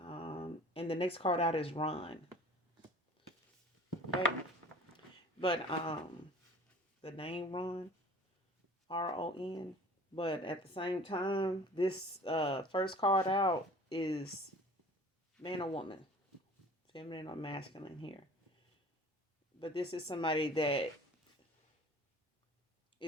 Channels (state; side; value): normal; both; correlation 0.45